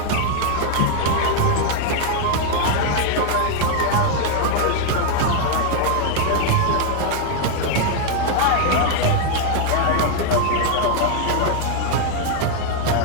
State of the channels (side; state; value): both; different; correlation 0.00